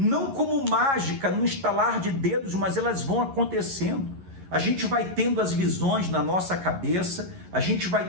como mágica, no estalar de dedos, mas elas vão acontecendo. A gente vai tendo as visões na nossa cabeça, a gente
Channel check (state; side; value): late; left; 11 ms